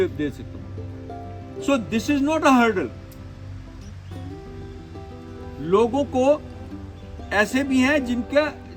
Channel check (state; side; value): identical; both; correlation 1.00